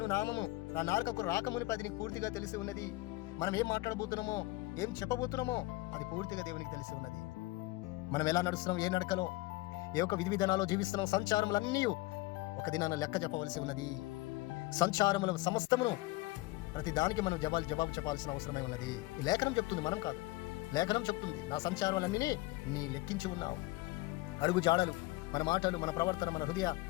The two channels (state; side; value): quieter; right; 19.8 dB